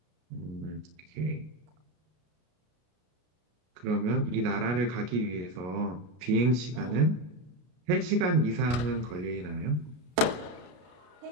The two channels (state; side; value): late; left; 32 ms